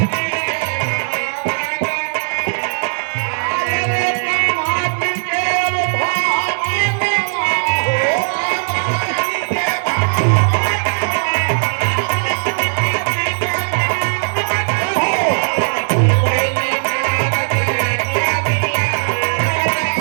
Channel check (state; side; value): silent; left; digital silence